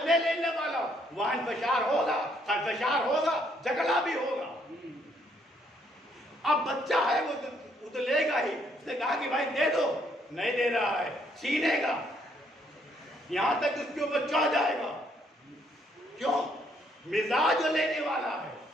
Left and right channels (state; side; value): normal; both; correlation 0.70